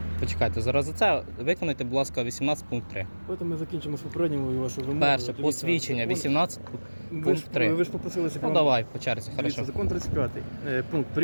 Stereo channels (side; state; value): both; inverted; correlation -1.00